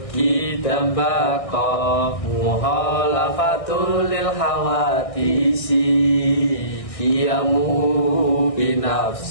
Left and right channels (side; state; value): right; late; 1.6 ms